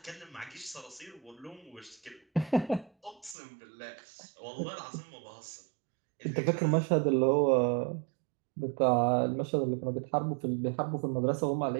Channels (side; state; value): left; drops out; at 3.4 s